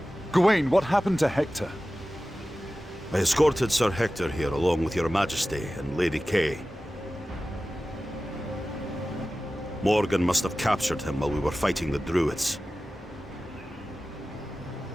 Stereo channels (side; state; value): both; normal; correlation 0.95